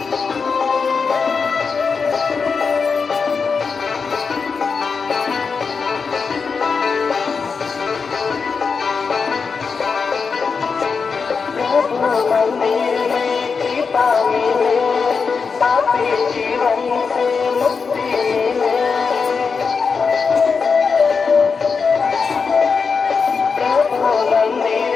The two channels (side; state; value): right; quieter; 5.3 dB